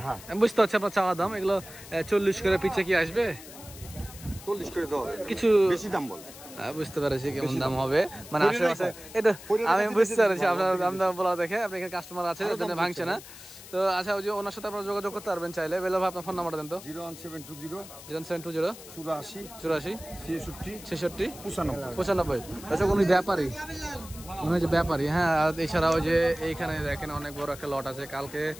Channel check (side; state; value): left; noise; hiss, 16 dB below the sound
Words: হ্যাঁ। আমি বুঝতে পারছি আপনার চাওয়া দাম। এগুলো 40 করে পিছে কি আসবে? 40 করে দেওয়া হবে। কিছু বেশি দাম বল। বুঝতে পারছি কেমন দাম হবে, মানে পরিণয় আশেপাশে কয়? এটা পরিণয় আমি কাছে বুঝতে বেশি পারছি দাম আপনার বলে, দাম দাম বলা দেখে। আপনি এখানে কাস্টমার আছে, আরো ওই জন্য দাম ভাঙছে না। তো আচ্ছা, ওই যে ওনার সাথে আপনারা যোগাযোগ করতে পারবেন চাইলে। বেলা ভাই আপনার ফোন নাম্বারটা দেন তো। 01720 0720 84 84 66 66 95। 95। আচ্ছা, উনি ব্যাপারী, উনি হচ্ছে ব্যাপারী। হ্যাঁ, আর এছাড়া ওই যে এইখানে দেখেন অনেক বড় একটা লট আছে। কালকে